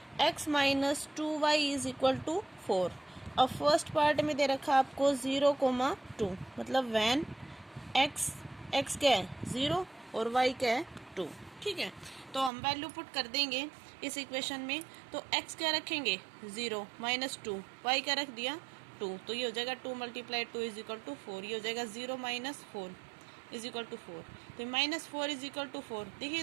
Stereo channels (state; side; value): drops out; left; at 12.5 s